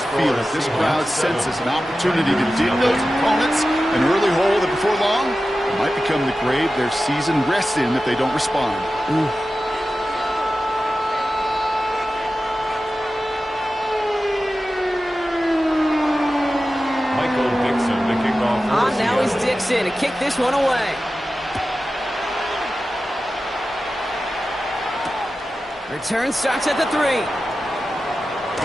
feel it. This crowd senses an opportunity to dig those opponents an early hole that before long might become the grave their season rests in if they don't respond. Ooh. Now is Dixon to kick this one away. Return starts at the 3. A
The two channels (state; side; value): normal; both; correlation 0.93